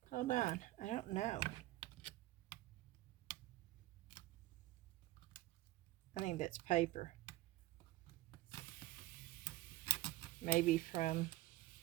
Hold on, I don't know. I think that's paper. Maybe from,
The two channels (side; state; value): left; quieter; 17.5 dB